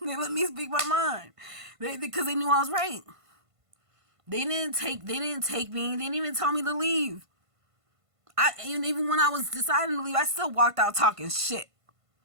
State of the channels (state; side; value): late; left; 1.5 ms